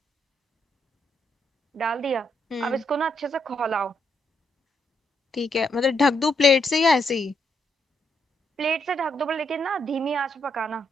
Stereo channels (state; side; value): normal; both; correlation 0.77